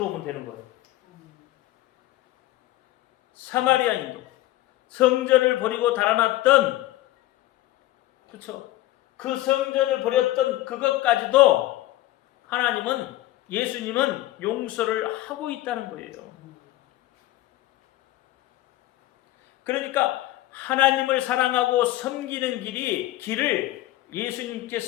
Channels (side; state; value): right; quieter; 16.3 dB